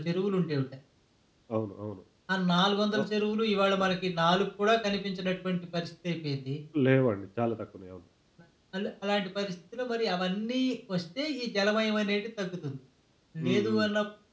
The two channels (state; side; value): identical; both; correlation 1.00